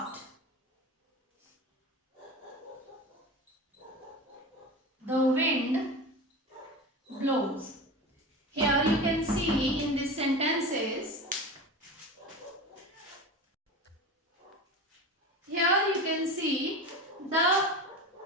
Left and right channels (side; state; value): both; normal; correlation 0.28